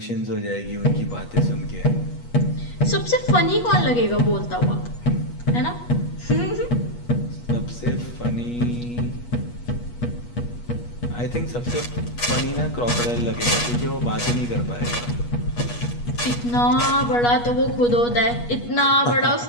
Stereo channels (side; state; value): right; late; 8.3 ms